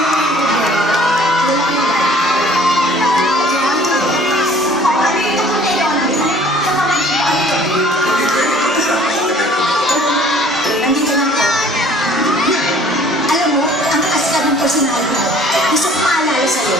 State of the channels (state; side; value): normal; both; correlation 0.53